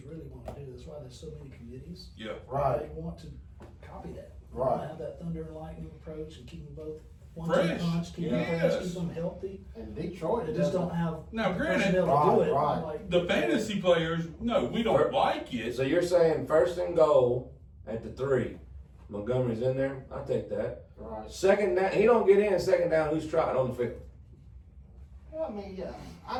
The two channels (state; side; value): identical; both; correlation 1.00